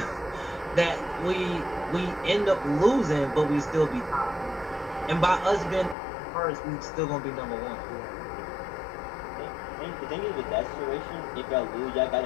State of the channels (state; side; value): drops out; right; at 6.0 s